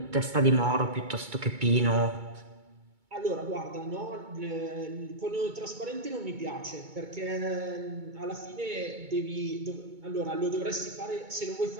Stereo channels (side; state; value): left; late; 2.2 ms